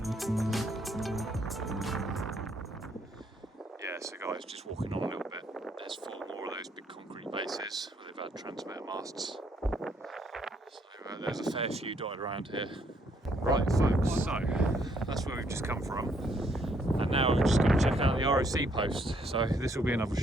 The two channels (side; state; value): both; normal; correlation 0.69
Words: Yeah, so guys, just walking on a little bit. There's 4 more of those big concrete bases where they've had transmitter masts. So there's a fair few dotted around here. Right folks, so that's where we've just come from, and now we're just going to check out the RoC Post. So this will be another